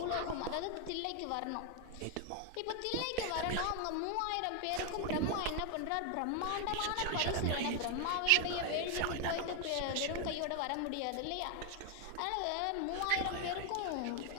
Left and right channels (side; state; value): both; different; correlation 0.01